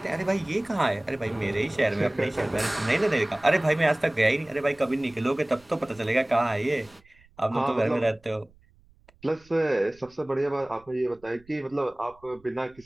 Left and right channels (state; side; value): noise; right; rumble, 29 dB below the sound